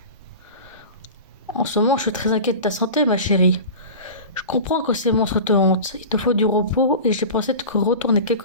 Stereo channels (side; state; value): both; inverted; correlation -0.33